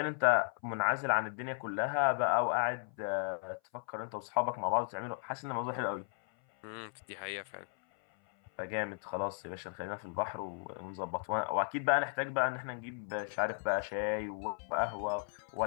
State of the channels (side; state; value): right; silent; 54 dB below the other